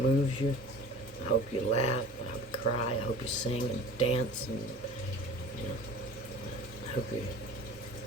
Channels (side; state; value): both; normal; correlation 0.41